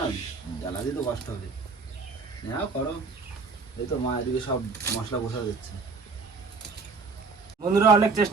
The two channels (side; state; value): left; quieter; 4.5 dB